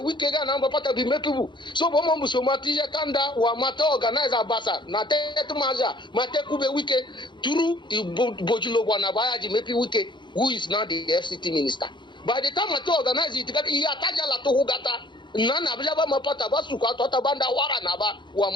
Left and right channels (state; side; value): late; right; 0.23 ms